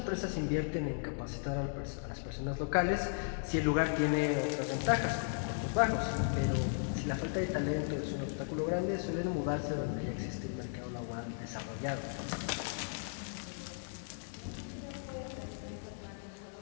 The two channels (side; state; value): right; silent; digital silence